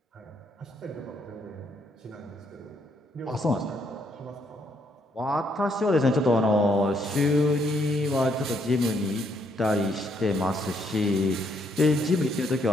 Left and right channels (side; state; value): both; normal; correlation 0.72